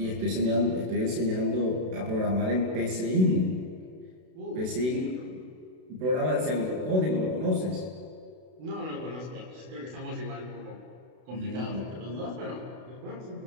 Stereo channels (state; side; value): late; left; 32 ms